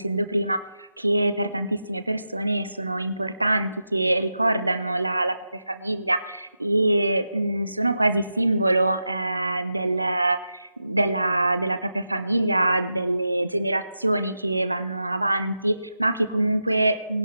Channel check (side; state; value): both; inverted; correlation -0.89